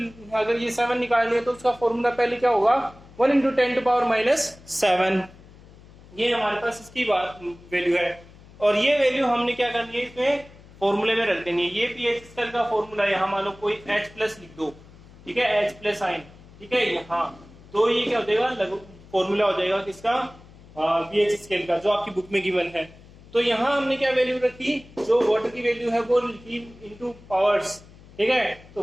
अगर ये 7 निकालनी है तो उसका फॉर्मूला पहले क्या होगा, 1 × 10⁻⁻7। ये हमारे पास इसकी बात वैल्यू है और ये वैल्यू हमने क्या करनी है, इसमें फॉर्मूले में रख देनी है। ये पीएच स्केल का फॉर्मूला यहाँ मान लो कोई H+ लिख दो, ठीक है, H+ आयन, ठीक है यहाँ। तो ये क्या हो जाएगा, फॉर्मूला हो जाएगा किसका, पीएच स्केल का, जो आपकी बुक में गिवन है। तो यहाँ हमने क्या वैल्यू रखी, जो वाटर की वैल्यू है वो लिखी इनटू पावर्स। ठीक है, तो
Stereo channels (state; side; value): noise; left; hum, 22 dB below the sound